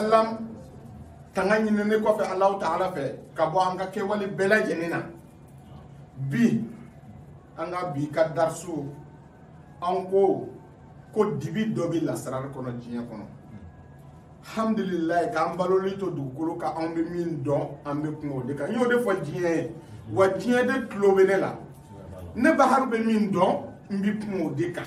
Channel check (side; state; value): both; identical; correlation 1.00